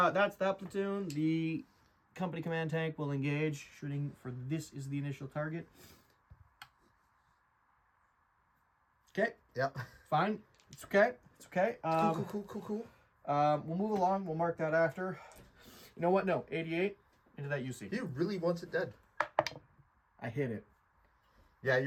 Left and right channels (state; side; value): identical; both; correlation 1.00